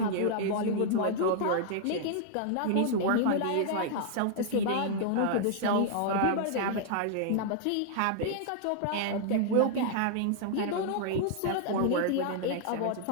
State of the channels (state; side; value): different; both; correlation -0.01